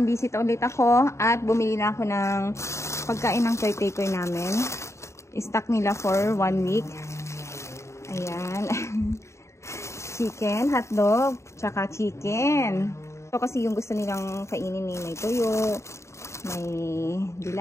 visit ulit ako at bumili na ako ng pagkain ng caretaker namin. I-stock nila for 1 week. Ayan. Chicken, hotdog, tsaka chicken. Ito kasi yung gusto nilang kainin ni may tuyo, may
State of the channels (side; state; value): right; late; 0.14 ms